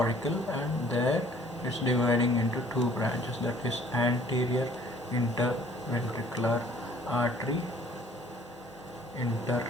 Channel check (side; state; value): both; normal; correlation 0.56